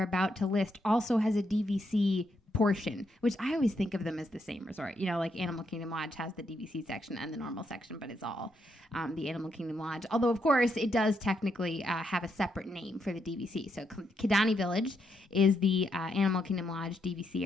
about to list also has a DVC portion, which I always think of them as the same resort. You know, like Animal Kingdom Lodge has the DVC section and the normal section, but it's all the Animal Kingdom Lodge. Although, of course, it does technically have a separate name for the DVC. So Kidani Village is the Animal Kingdom Lodge DVC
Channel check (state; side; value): normal; both; correlation 0.79